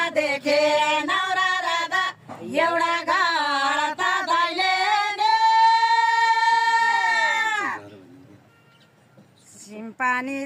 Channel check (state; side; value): identical; both; correlation 1.00